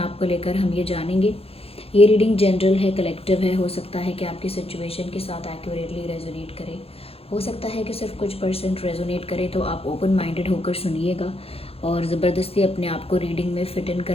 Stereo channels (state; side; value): late; right; 0.28 ms